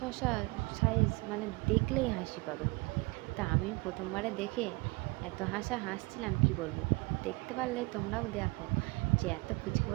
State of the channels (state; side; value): quieter; left; 25.5 dB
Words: সাইজ, মানে দেখলেই হাসি পাবে। তা আমি প্রথমবারে দেখে এত হাসছিলাম কি বলবো। দেখতে পারলে তোমরাও দেখো যে এত পুচকে